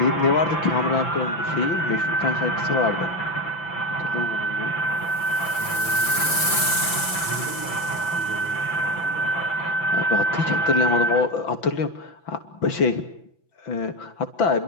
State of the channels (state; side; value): late; right; 5.9 ms